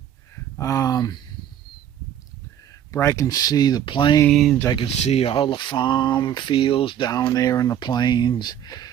But I can see the plains. I can see all the farm fields down there in the plains.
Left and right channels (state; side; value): quieter; left; 10.2 dB